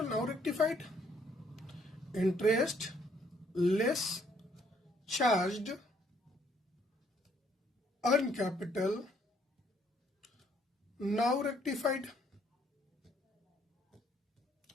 now rectified. Interest less charge on capital, now rectified,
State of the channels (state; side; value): normal; both; correlation 0.66